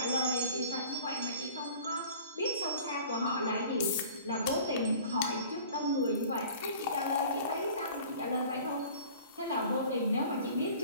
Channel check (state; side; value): inverted; both; correlation -0.45